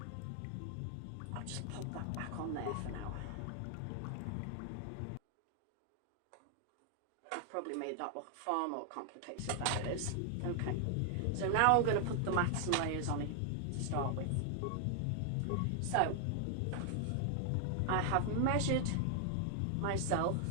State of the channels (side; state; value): both; different; correlation 0.00